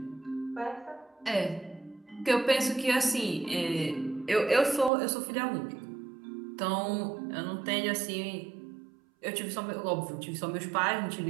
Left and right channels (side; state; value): left; drops out; at 4.9 s